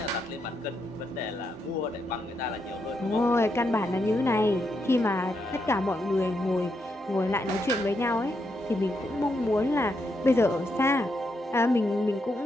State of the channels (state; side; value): normal; both; correlation 0.81